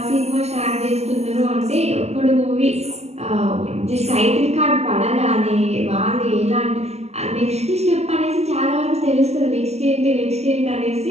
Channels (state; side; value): late; left; 0.31 ms